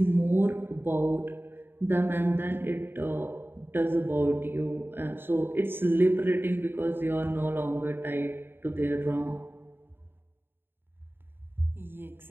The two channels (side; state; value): left; late; 0.10 ms